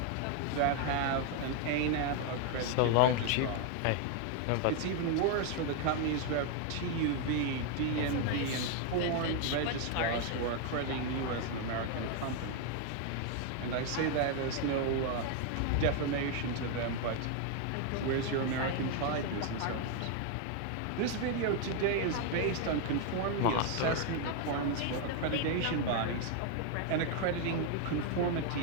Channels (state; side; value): different; both; correlation 0.00